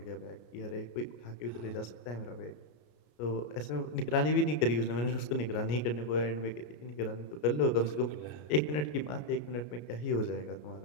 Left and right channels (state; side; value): late; right; 33 ms